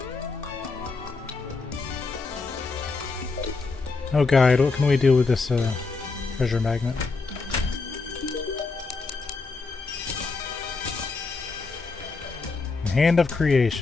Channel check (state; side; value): quieter; right; 4.1 dB